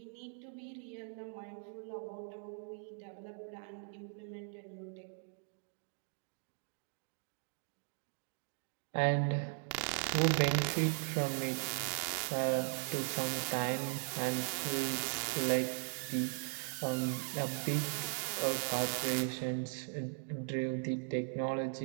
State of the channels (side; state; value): left; silent; 52 dB below the other